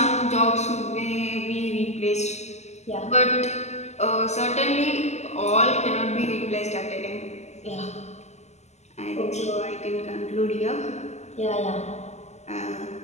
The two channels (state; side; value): late; right; 0.33 ms